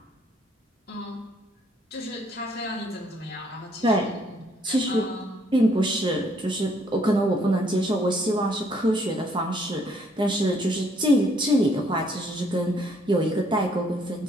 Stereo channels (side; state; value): both; normal; correlation 0.66